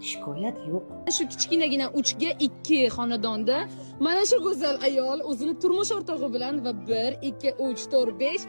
shikoyat yo'q. Shu kichkinagina 3 ga 2 xonadonda mana shu go'zal ayol o'zini turmush o'rtog'i bilan va 1, 2, 3, 4, 5,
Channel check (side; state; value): both; inverted; correlation -1.00